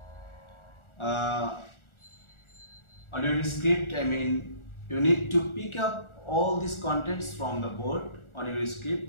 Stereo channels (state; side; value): late; right; 1.4 ms